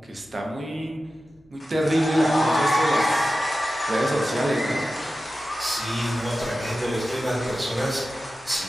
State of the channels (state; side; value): normal; both; correlation 0.94